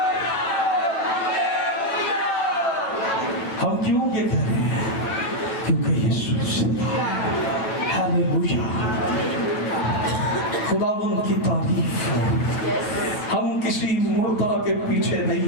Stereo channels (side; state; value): right; late; 9.1 ms